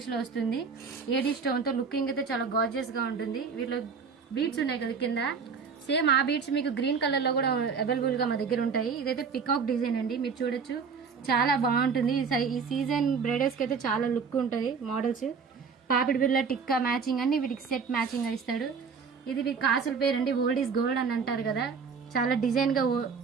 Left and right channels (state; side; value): quieter; left; 5.7 dB